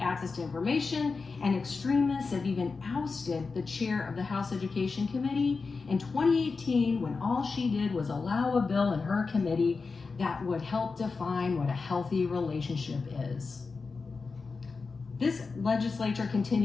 access to information, and extremists have even ousted the chair of the House Education Committee in 2018 when all she did was allow a bill in her committee that would help define what a healthy relationship is. This legislature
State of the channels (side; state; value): right; quieter; 4.4 dB